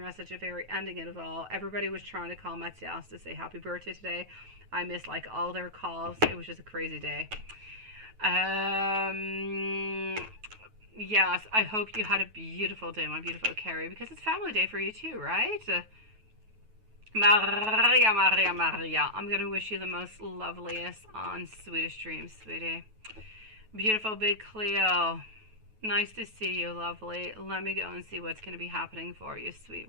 at the very ending of it all. Everybody was trying to call Matthias to say happy birthday today. I missed like all their calls. It was just a crazy day. Yes, I hope you had a beautiful day, my beautiful Carrie, because it's family day for you too, right? Maria, Maria, Maria. I'm going to wish you the most loveliest and sweetest dreams, sweetie. Beautiful big Cleo. Nice to see you, lovely. Let me go and see what's going to be happening for you,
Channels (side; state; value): left; late; 9.3 ms